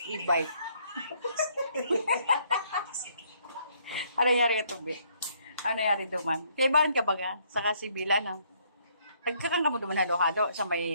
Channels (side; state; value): both; inverted; correlation -0.68